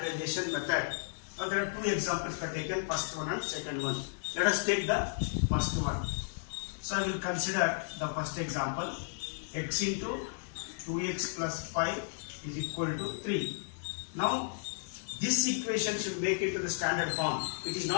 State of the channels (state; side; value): silent; right; 55 dB below the other